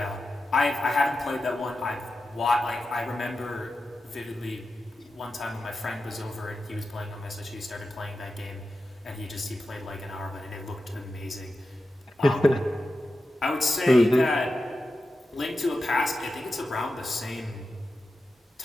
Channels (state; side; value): normal; both; correlation 0.91